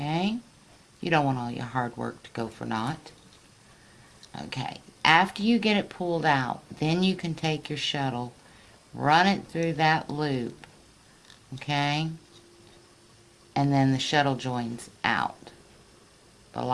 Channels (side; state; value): both; identical; correlation 1.00